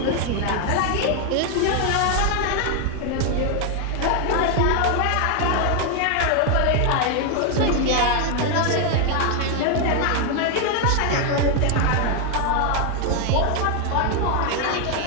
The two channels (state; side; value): different; both; correlation 0.00